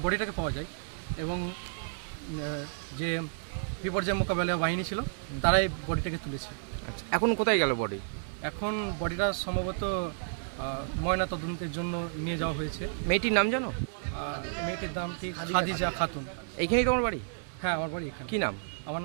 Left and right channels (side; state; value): left; silent; digital silence